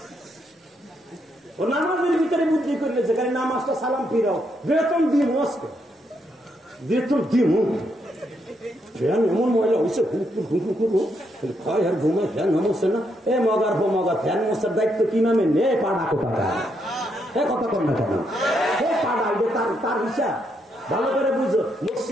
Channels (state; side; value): normal; both; correlation 0.78